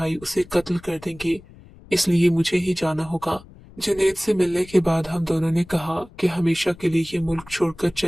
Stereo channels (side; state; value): left; noise; rumble, 22 dB below the sound